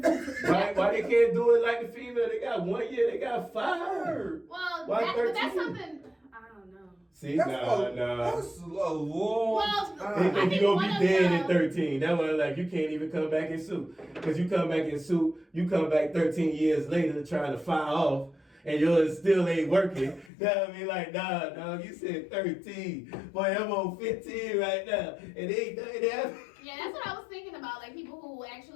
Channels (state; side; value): drops out; right; at 20.3 s